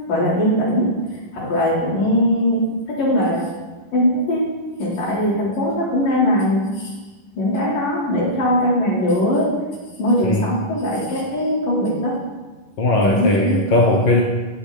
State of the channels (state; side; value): late; right; 11 ms